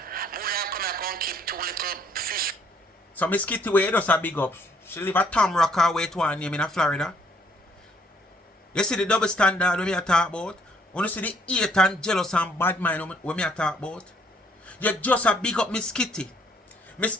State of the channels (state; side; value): normal; both; correlation 0.65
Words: More than come here and keep 2 little fish. So Miss Kitty way does a big up. She live at Tom Rocker way to her name in Florida. You see the double standard when me a talk about? When you see the hate and jealous and bad mind when me a talk about? You just a big up Miss Kitty. Miss